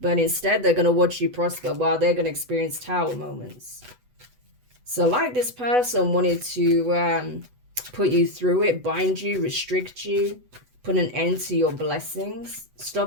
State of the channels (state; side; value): late; left; 8.1 ms